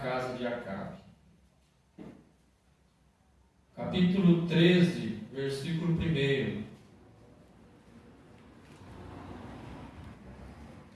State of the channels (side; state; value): both; identical; correlation 1.00